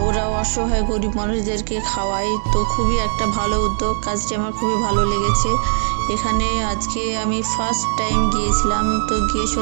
ওরা অসহায় গরিব মানুষদেরকে খাওয়ায়। তো খুবই একটা ভালো উদ্যোগ, কাজটি আমার খুবই ভালো লেগেছে। এখানে আজকে আমি ফার্স্ট টাইম গিয়েছিলাম, তো গিয়ে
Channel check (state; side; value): silent; left; 66 dB below the other